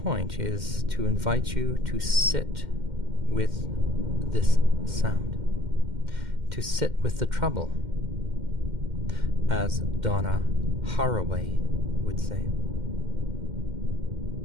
is to invite you to sit with this sound, to sit with the trouble, as Donna Haraway would say.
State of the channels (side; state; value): left; late; 2.1 ms